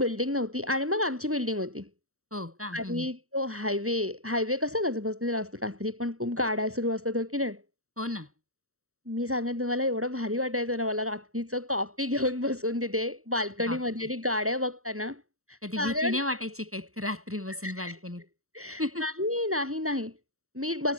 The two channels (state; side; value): late; left; 0.64 ms